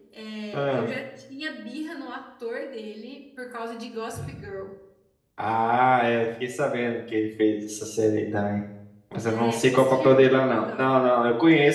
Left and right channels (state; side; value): identical; both; correlation 1.00